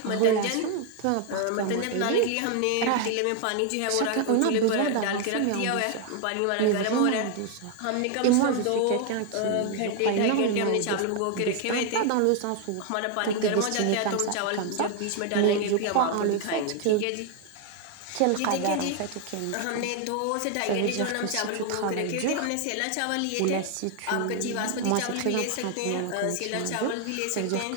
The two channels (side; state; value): both; different; correlation 0.00